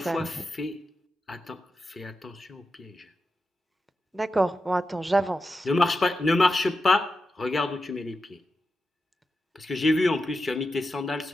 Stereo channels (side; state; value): both; normal; correlation 0.89